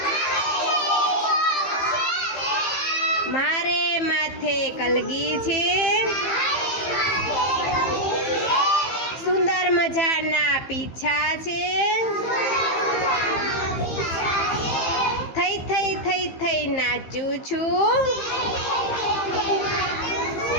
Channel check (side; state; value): right; late; 15 ms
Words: મારે માથે કલગી છે, સુંદર મજાના પીછા છે, થઈ થઈ થઈ થઈ નાચું છું,